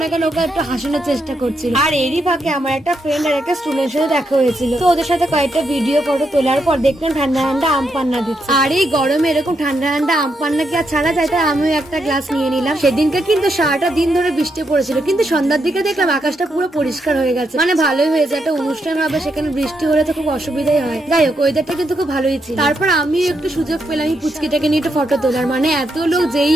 না কেন ওকে একটু হাসানোর চেষ্টা করছিল। আর এরই ফাঁকে আমার একটা ফ্রেন্ড আর একটা স্টুডেন্টের সাথে দেখা হয়েছিল, তো ওদের সাথে কয়েকটা ভিডিও ফটো তোলার পর দেখলাম ঠান্ডা ঠান্ডা আম পান্না দিচ্ছে। আর এই গরমে এরকম ঠান্ডা ঠান্ডা আম পান্না কি আর ছাড়া যায়, তাই আমিও একটা গ্লাস নিয়ে নিলাম। সেদিনকে কিন্তু সারাটা দিন ধরে বৃষ্টি পড়েছিল, কিন্তু সন্ধ্যার দিকে দেখলাম আকাশটা পুরো পরিষ্কার হয়ে গেছে, মানে ভালোই হয়েছে। একটা অনুষ্ঠান হবে, সেখানে বৃষ্টি হলে তো খুব অসুবিধাই হয়। যাই হোক, ওয়েদারটা কিন্তু খুব ভালোই ছিল। তারপর আমি একটু সুযোগ পেলাম এই পুচকিটাকে নিয়ে একটু ফটো তোলার, মানে এত লোক যেই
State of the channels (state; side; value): normal; both; correlation 0.80